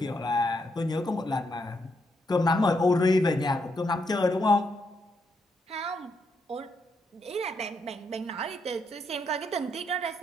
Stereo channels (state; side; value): normal; both; correlation 0.78